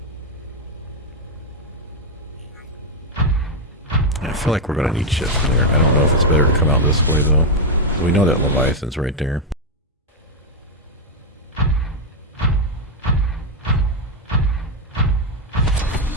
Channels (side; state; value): both; normal; correlation 0.01